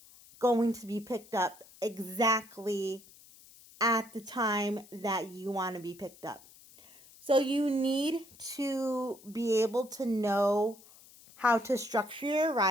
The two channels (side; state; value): left; noise; hiss, 23 dB below the sound